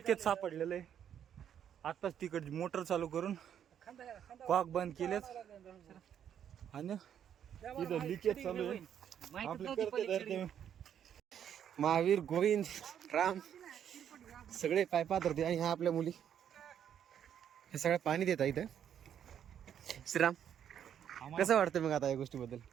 सापडलेलं आहे. आताच तिकडची मोटर चालू करून कॉक बंद केलेत आणि इथं लिकेज चालू आहे. आपले करते धरते महावीर, गोविंद, राम सगळे पायपात होते आणि ह्या आपल्या मुली हे सगळं पाणी देतात इथं. श्रीराम, कसं वाटतं मग आता या गोष्टीबद्दल?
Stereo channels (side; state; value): left; quieter; 9.3 dB